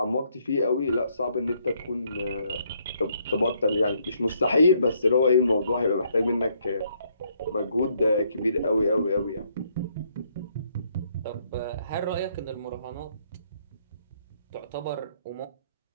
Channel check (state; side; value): inverted; both; correlation -0.70